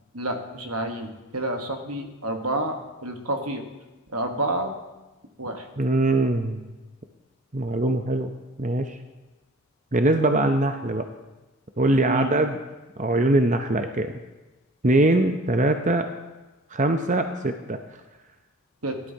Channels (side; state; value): both; normal; correlation 0.43